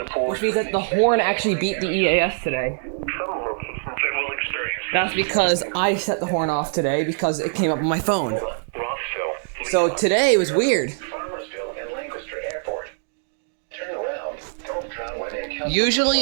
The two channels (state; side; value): silent; left; digital silence